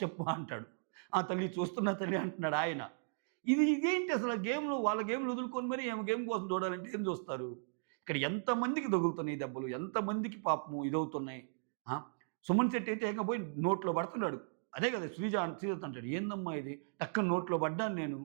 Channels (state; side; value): silent; left; digital silence